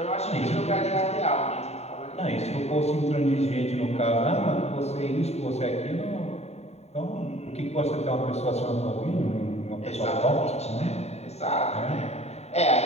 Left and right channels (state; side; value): late; right; 0.31 ms